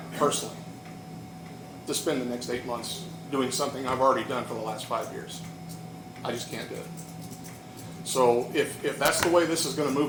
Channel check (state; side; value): identical; both; correlation 1.00